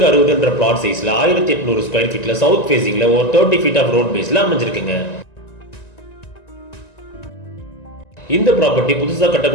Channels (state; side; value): late; right; 1.9 ms